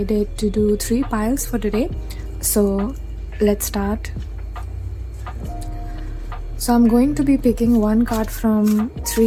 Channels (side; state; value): both; identical; correlation 1.00